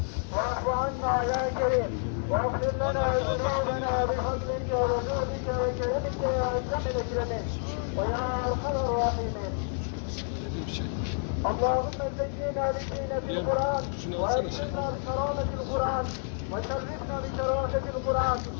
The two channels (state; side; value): silent; right; 58 dB below the other